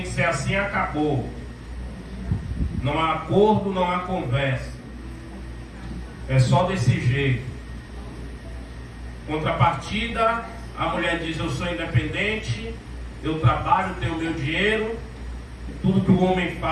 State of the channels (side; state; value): both; identical; correlation 1.00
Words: que ser assim, acabou. Não há acordo, não há conversa. É só desse jeito. Contrapartida, a mulher diz: eu sou independente, eu trabalho, tenho meu dinheiro, tudo que o homem